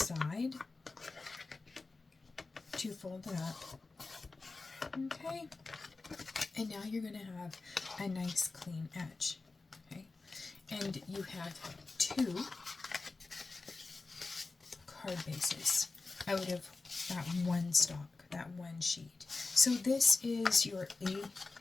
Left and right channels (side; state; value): right; quieter; 3.7 dB